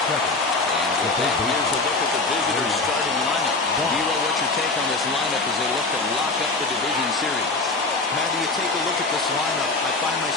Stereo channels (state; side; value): quieter; right; 3.5 dB